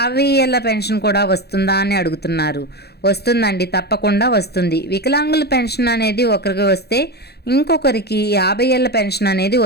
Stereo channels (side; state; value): right; late; 0.47 ms